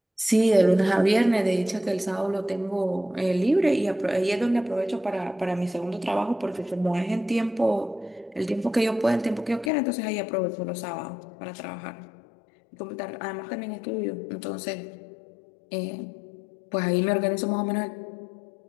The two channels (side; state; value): right; drops out; at 9.7 s